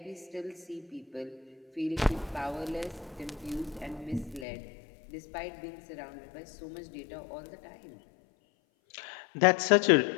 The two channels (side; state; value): right; drops out; at 4.5 s